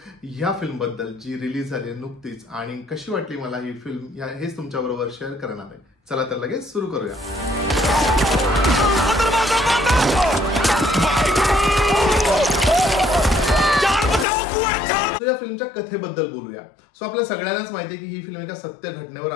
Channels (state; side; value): drops out; right; at 14.2 s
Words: ह्या फिल्म बद्दल, जी रिलीज झाली आहे नुकतीच, आणि कशी वाटली मला ही फिल्म हेच तुमच्या बरोबर शेअर करणार आहे. चला तर लगेच सुरू करूया. या फिल्मच्या कथेबद्दल बोलूया. सो आपल्या सगळ्यांनाच माहिती आहे की ही फिल्म एका सत्य घटनेवर